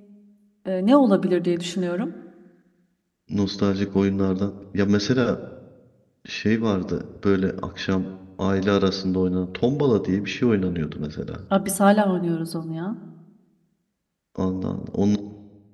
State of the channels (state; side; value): identical; both; correlation 1.00